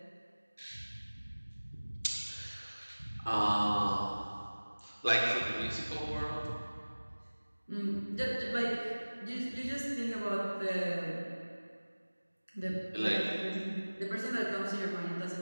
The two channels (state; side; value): inverted; both; correlation -1.00